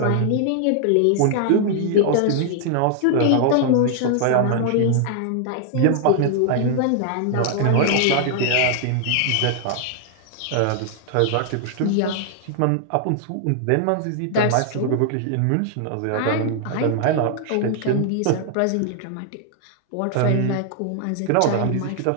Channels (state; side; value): different; both; correlation 0.00